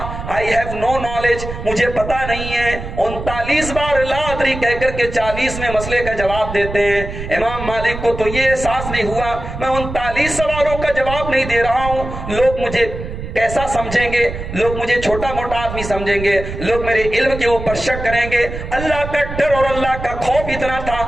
آئی ہیو نو نالج, مجھے پتا نہیں ہے. 39 بار لا ادری کہہ کر کے 40 میں مسئلے کا جواب دیتے ہیں. امام مالک کو تو یہ احساس نہیں ہوا میں 39 سوالوں کا جواب نہیں دے رہا ہوں, لوگ مجھے کیسا سمجھیں گے, لوگ مجھے چھوٹا موٹا آدمی سمجھیں گے, لوگ میرے علم کے اوپر شک کریں گے. اللہ کا ڈر اور اللہ کا خوف اتنا تھا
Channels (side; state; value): right; noise; rumble, 8 dB below the sound